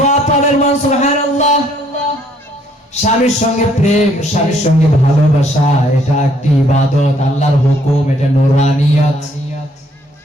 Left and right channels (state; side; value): normal; both; correlation 0.65